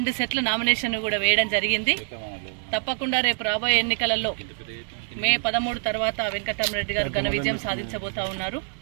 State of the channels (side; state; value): left; silent; 55 dB below the other